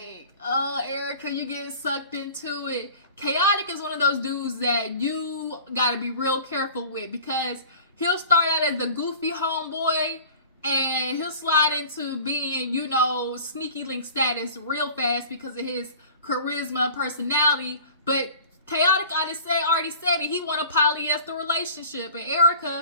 oh, Erica, you getting sucked into it. Khaotic is one of those dudes that you gotta be real careful with, because he'll start out as the goofy homeboy, and he'll slide into being, sneaky link status real fast because of his charisma and personality. But Khaotic already said it. He want a polyester relationship. And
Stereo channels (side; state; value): both; inverted; correlation -0.43